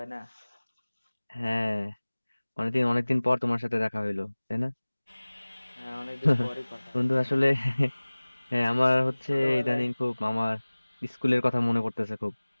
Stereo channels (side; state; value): both; inverted; correlation -1.00